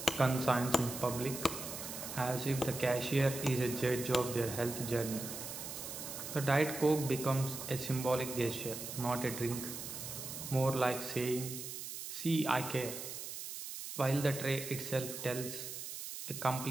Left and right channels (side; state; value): right; noise; hiss, 8 dB below the sound